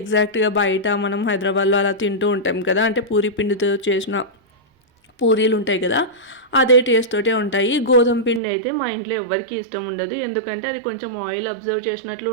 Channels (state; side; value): drops out; left; at 8.4 s